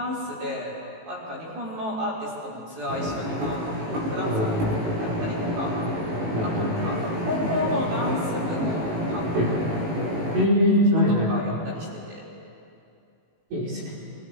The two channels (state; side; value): late; left; 19 ms